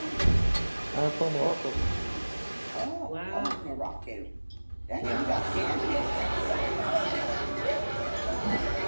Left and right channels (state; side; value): inverted; both; correlation -1.00